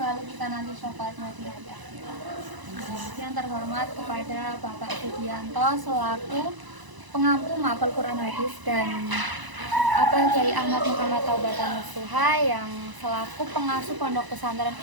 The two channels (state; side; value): late; left; 1.0 ms